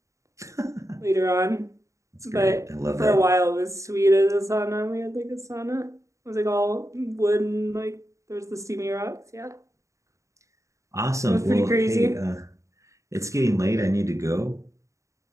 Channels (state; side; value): late; left; 0.15 ms